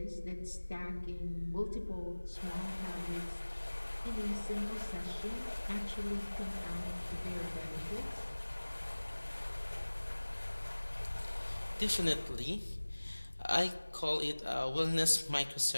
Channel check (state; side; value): inverted; both; correlation -1.00